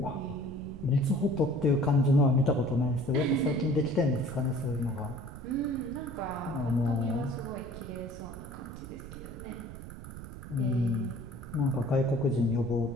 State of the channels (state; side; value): noise; right; rumble, 12 dB below the sound